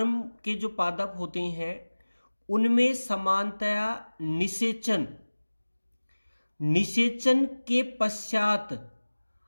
के जो पादप होते हैं उनमें समानतया निषेचन के पश्चात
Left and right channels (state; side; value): inverted; both; correlation -1.00